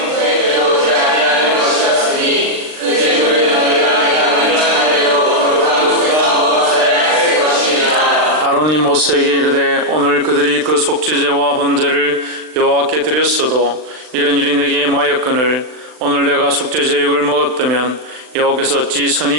아론이 모세에게 이르되 오늘 그들이 그 속죄제와 번제를 여호와께 드렸어도 이런 일이 내게 임하였거늘 오늘 내가 속죄제육을 먹었다면 여호와께서 어찌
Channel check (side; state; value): left; late; 39 ms